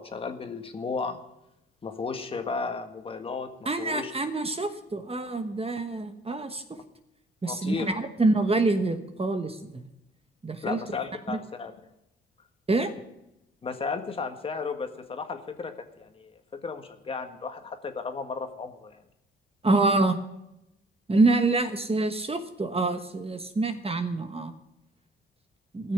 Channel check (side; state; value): both; normal; correlation 0.57